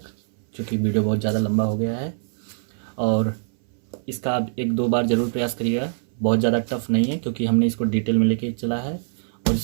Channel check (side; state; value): left; silent; 62 dB below the other